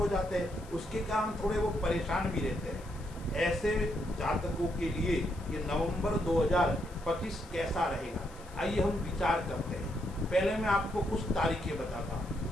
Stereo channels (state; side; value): noise; left; hiss, 23 dB below the sound